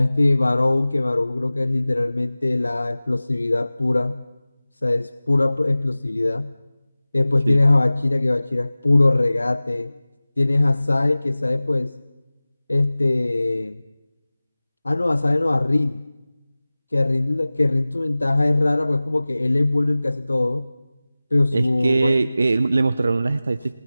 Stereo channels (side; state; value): both; inverted; correlation -0.98